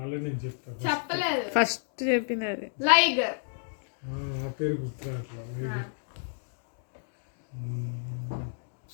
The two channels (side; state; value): right; silent; digital silence